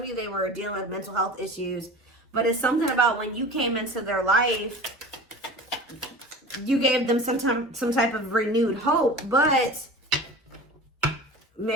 of you, they were dealing with mental health issues. But it's something about when you came into their life, you gave them some type of renewed hope. But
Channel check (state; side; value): normal; both; correlation 0.37